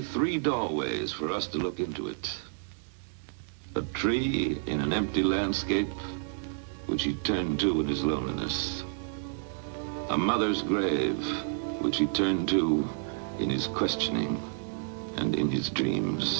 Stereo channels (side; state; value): left; silent; 58 dB below the other